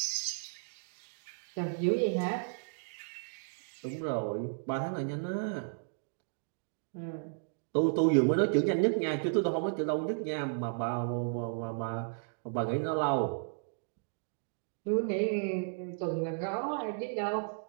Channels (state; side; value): silent; left; digital silence